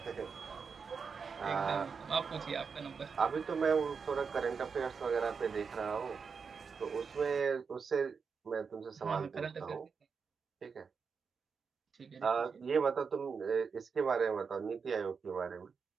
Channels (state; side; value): quieter; left; 5.6 dB